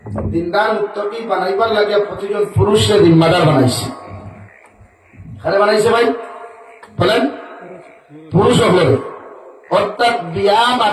দিনদার মুত্তকি বানাইবার লাগে প্রতিজন পুরুষের জিম্মাদার বানাইছে। খারে বানাইছে ভাই বলেন, পুরুষ হলে অর্থাৎ বিয়া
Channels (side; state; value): both; identical; correlation 1.00